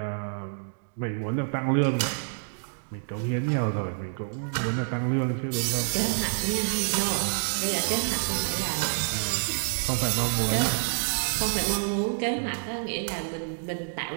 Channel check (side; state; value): left; silent; digital silence